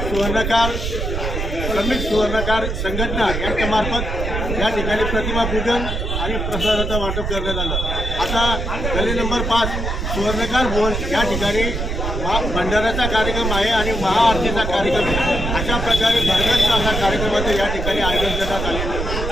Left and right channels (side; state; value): right; noise; rumble, 3 dB below the sound